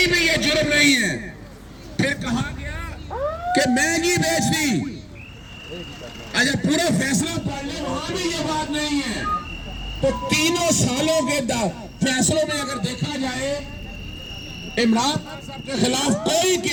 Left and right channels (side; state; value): both; identical; correlation 1.00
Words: بھی یہ جرم نہیں ہے. پھر کہا گیا کہ مہنگی بیچ دی. اچھا پورا فیصلہ پڑھ لیں, وہاں بھی یہ بات نہیں ہے. تو تینوں سالوں کے فیصلوں میں اگر دیکھا جائے عمران خان صاحب کے خلاف کوئی